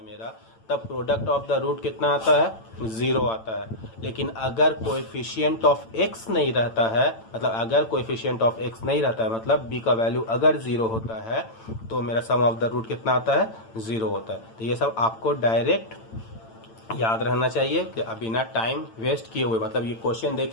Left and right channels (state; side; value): late; right; 8.9 ms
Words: मेरा, तब प्रोडक्ट ऑफ द रूट कितना आता है 0 आता है। लेकिन अगर कोएफिशिएंट ऑफ x नहीं रहता है, मतलब अगर कोएफिशिएंट ऑफ x नहीं रहता है, मतलब b का वैल्यू अगर 0 होता है, तो मेरा सम ऑफ द रूट कितना आता है 0 होता है। तो ये सब आपको डायरेक्ट याद रहना चाहिए कि बिना टाइम वेस्ट किए हुए, मतलब ये क्वेश्चन